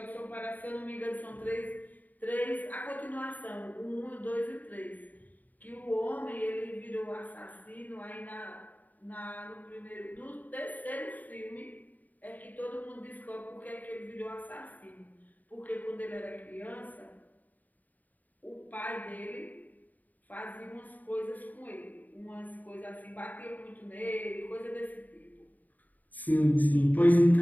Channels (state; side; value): late; right; 0.081 ms